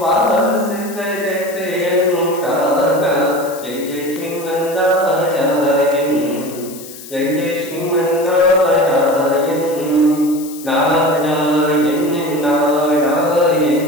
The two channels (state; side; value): noise; left; hiss, 15 dB below the sound